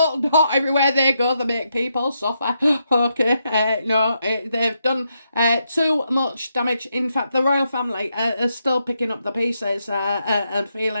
not. Everywhere they go, they make people suffer. Okay, no, they've done too much damage. In fact, the royal family are still picking up the pieces and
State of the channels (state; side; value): inverted; both; correlation -0.81